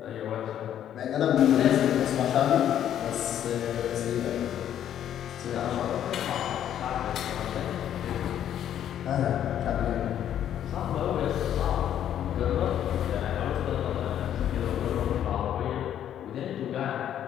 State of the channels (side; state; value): right; quieter; 10.4 dB